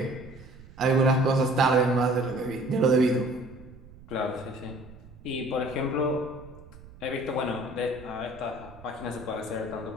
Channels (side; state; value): right; noise; rumble, 19 dB below the sound